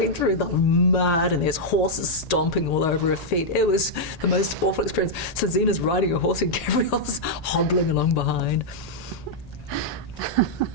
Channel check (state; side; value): late; right; 1.8 ms